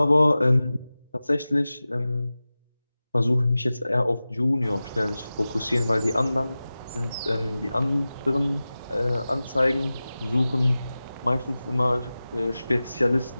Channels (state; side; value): inverted; both; correlation -0.96